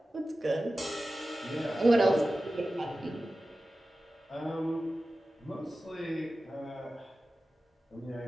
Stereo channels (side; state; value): both; normal; correlation 0.95